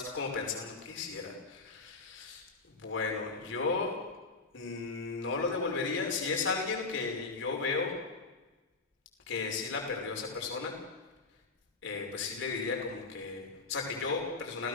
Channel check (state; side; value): quieter; right; 4.0 dB